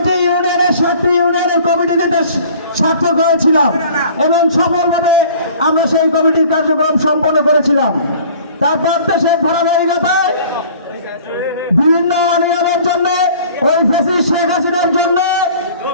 ইউনিয়নের ৭টি ইউনিয়নের কমিটিতে সার্থক হয়েছিলাম এবং সফলভাবে আমরা সেই কমিটির কার্যক্রম সম্পন্ন করেছিলাম। তারপর দেশের ধারাবাহিকতায় বিভিন্ন অনিয়মের জন্য, ওই ফ্যাসিস্ট শেখ হাসিনার জন্য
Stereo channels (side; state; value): both; inverted; correlation -0.49